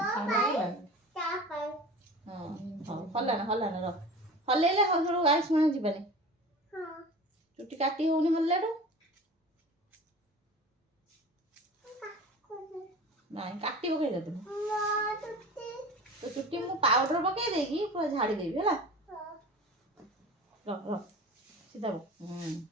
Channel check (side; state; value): both; normal; correlation 0.37